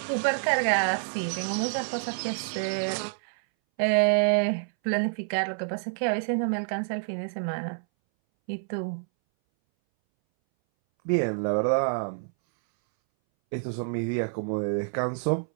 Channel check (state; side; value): silent; left; 60 dB below the other